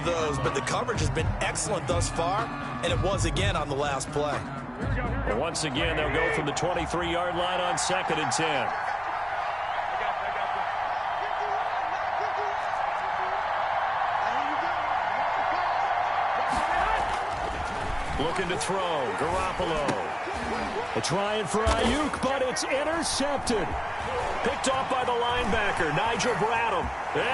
those. But the coverage has been excellent thus far. And it was again on the last play. Well, once again, they'll go from the 23-yard line on 2nd and 10. Looking to throw. Garoppolo. Trying for Ayuk, but it's intercepted. Picked off by the linebacker, Nigel Bradham.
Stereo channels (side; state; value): both; identical; correlation 1.00